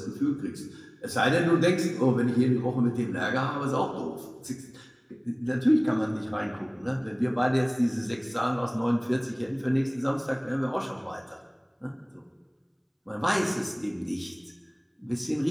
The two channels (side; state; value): both; identical; correlation 1.00